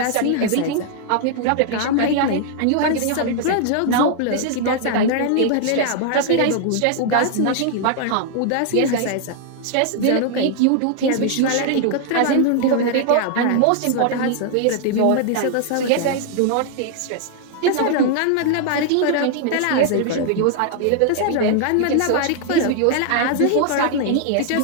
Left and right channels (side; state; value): both; different; correlation 0.00